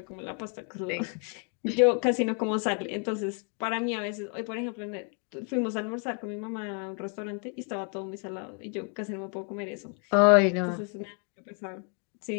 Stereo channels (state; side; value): quieter; right; 38.5 dB